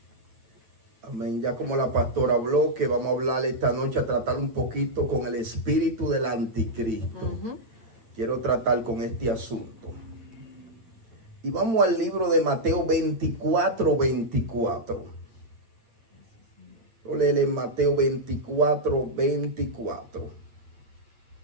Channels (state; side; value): late; left; 8.9 ms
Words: Amén. Ya como la pastora habló, que vamos a hablar esta noche, a tratar un poquito con el espíritu del anticristo. Quiero tratar con este asunto. Y vamos al libro de Mateo 24:24. Lo leer en Mateo 24:24.